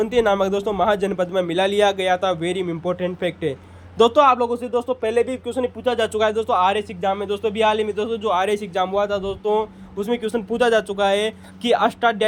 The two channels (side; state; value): both; identical; correlation 1.00